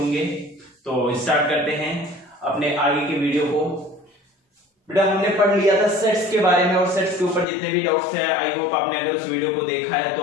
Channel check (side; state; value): right; drops out; at 7.5 s